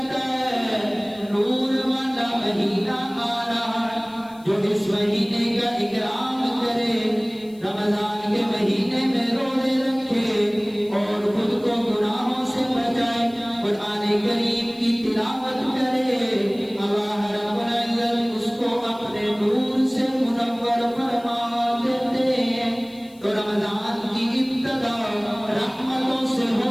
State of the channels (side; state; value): left; noise; hiss, 27 dB below the sound